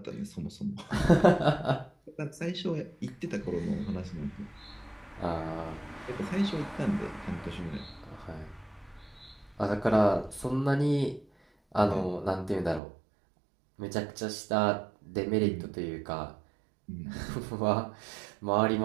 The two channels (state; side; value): drops out; left; at 12.8 s